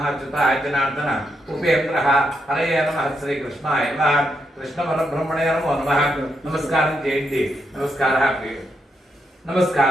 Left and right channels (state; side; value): normal; both; correlation 0.81